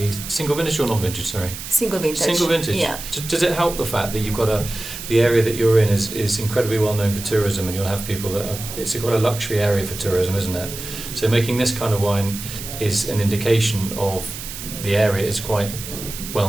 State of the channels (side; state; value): right; noise; hiss, 10 dB below the sound